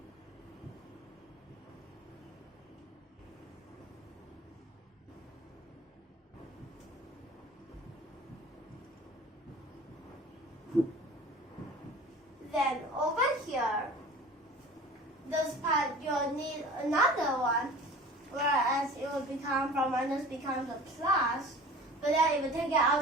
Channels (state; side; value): normal; both; correlation 0.41